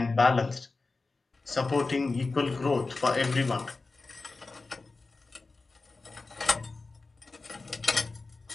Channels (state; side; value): quieter; right; 3.7 dB